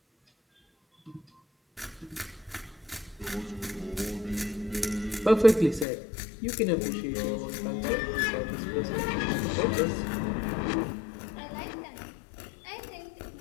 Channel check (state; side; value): drops out; right; at 5.9 s